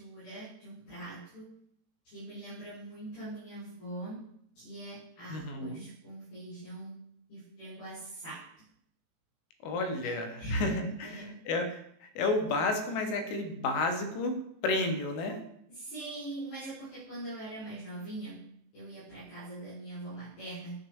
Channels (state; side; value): late; right; 18 ms